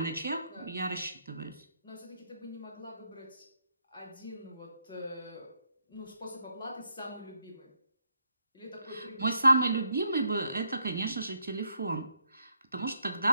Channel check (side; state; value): both; inverted; correlation -0.76